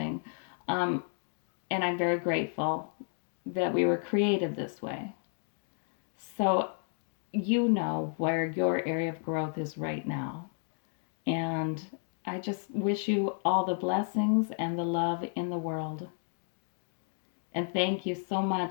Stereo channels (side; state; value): right; silent; 56 dB below the other